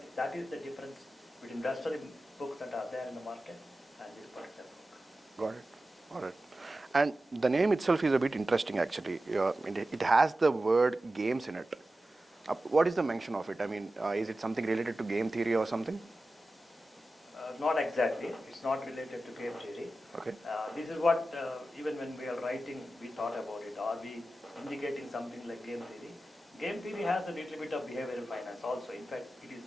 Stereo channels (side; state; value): both; normal; correlation 0.94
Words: That is the difference between industrial books that are there in the market and this particular book. Got it. All right. And the name itself is a bit interesting actually. It has the word games in it. What is the mention of it? I mean, is it something related to game theory or something? Not exactly. It's not related to game theory. Okay. This is what, even when we are writing, we thought about it. Are we indicating something like game theory? Game theory has a little bit of behavioral finance also. In fact, it